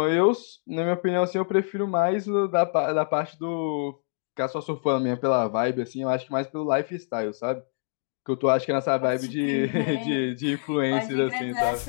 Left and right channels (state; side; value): silent; right; digital silence